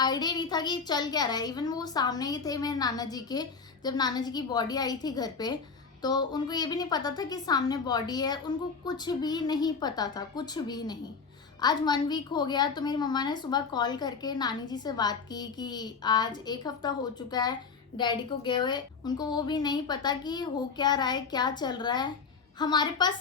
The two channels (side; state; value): right; quieter; 5.3 dB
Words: नहीं था कि चल क्या रहा है। इवन वो सामने ही थे मेरे नाना जी के, जब नाना जी की बॉडी आई थी घर पे, तो उनको ये भी नहीं पता था कि सामने बॉडी है, उनको कुछ भी नहीं पता था, कुछ भी नहीं। आज 1 वीक हो गया तो मेरी मम्मा ने सुबह कॉल करके नानी जी से बात की कि आज 1 हफ्ता हो चुका है डैडी को गए हुए, उनको वो भी नहीं पता कि हो क्या रहा है, क्या चल रहा है। हमारे पास